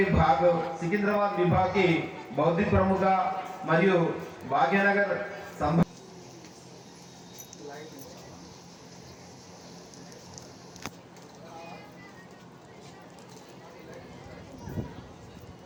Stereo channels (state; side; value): identical; both; correlation 1.00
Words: భాగ్ సికింద్రాబాద్ విభాగ్కి బౌద్ధిక ప్రముఖ మరియు భాగ్యనగర్